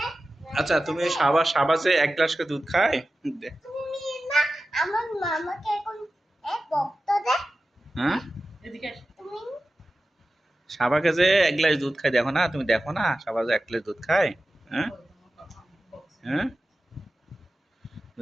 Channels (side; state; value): both; normal; correlation 0.94